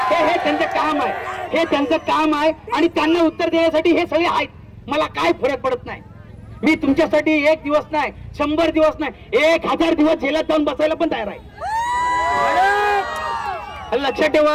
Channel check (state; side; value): identical; both; correlation 1.00